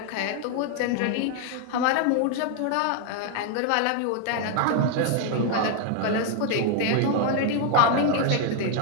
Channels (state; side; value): different; both; correlation 0.00